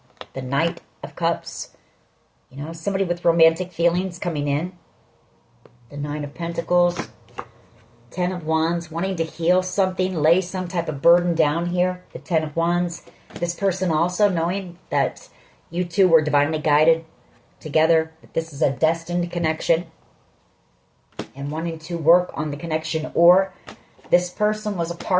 the Knight of Cups. You know, somebody with romantic feelings coming in. The Nine of Pentacles. Ten of Wands, wanting to heal something, lay some type of burden down here. The Ten of Wands. This person also knowing that you two were divinely guided together. That this is a destined connection. And wanting to work on the connection. Or this person was a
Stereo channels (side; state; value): both; identical; correlation 1.00